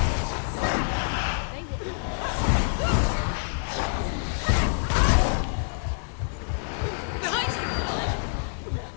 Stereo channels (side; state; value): right; silent; 61 dB below the other